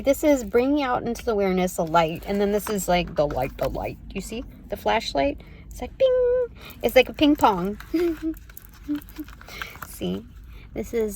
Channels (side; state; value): both; identical; correlation 1.00